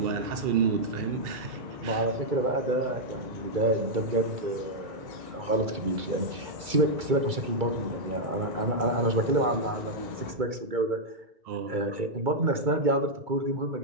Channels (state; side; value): late; left; 2.3 ms